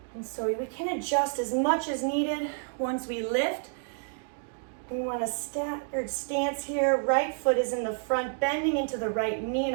And so we can adjust as much as needed once we lift. We want a staggered stance here. Right foot is in the front, bending into the right knee,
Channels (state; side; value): silent; left; digital silence